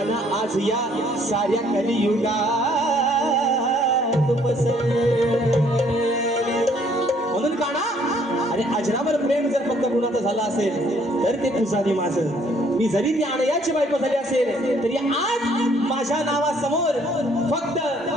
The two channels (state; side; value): normal; both; correlation 0.63